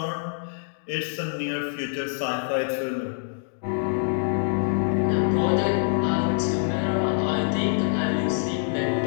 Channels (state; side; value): silent; right; digital silence